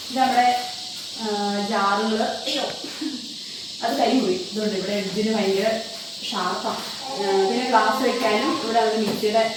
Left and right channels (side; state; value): both; identical; correlation 1.00